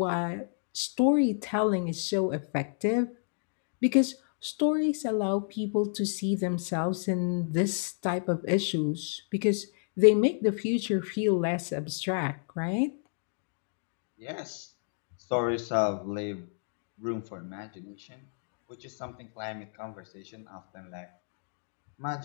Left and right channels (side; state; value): right; silent; digital silence